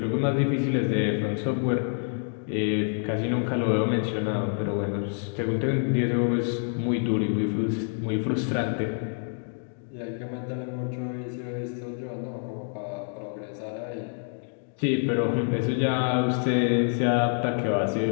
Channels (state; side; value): silent; right; 60 dB below the other